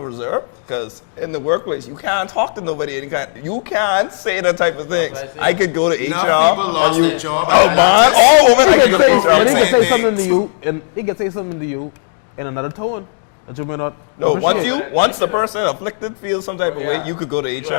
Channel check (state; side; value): silent; right; digital silence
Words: reserve? Because in the workplace you can't talk to nobody any kind. You can't say that type of things. I could go to HR. Enough people lost their job. Oh man, all women I could go to HR saying for. things. And he can say something to you in another tone, but you may not. No, once the person afflicted feels some type of way, you could go to